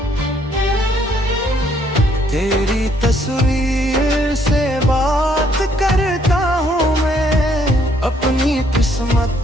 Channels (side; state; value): both; normal; correlation 0.67